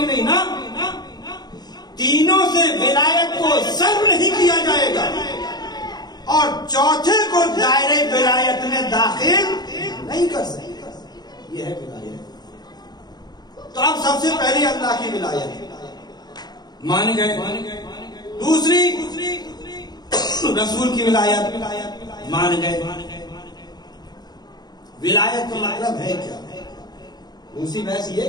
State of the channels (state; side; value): late; right; 0.20 ms